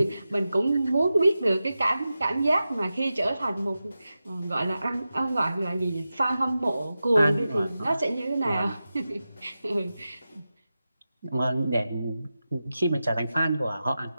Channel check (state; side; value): inverted; both; correlation -0.93